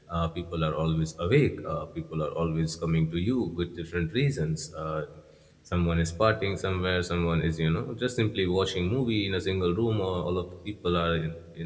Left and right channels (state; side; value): identical; both; correlation 1.00